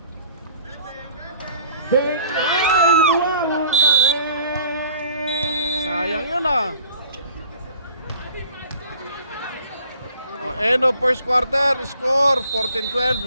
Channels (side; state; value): both; inverted; correlation -0.53